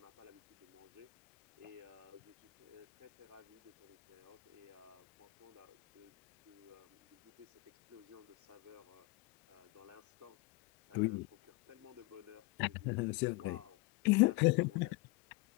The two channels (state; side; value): quieter; right; 22.8 dB